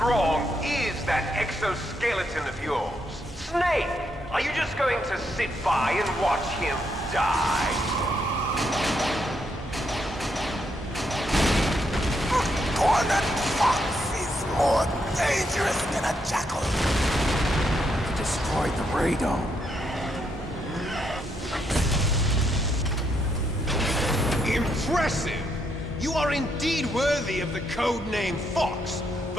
is that exoskeleton of yours? Snake, are you just going to sit by and watch him die? Cornered fox is more dangerous than a jackal. Destroyed the radome. Impressive! You are indeed worthy of the codename Fox,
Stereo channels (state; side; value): normal; both; correlation 0.77